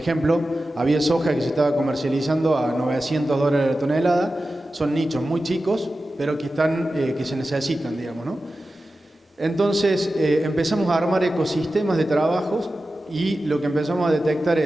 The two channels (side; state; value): both; normal; correlation 0.93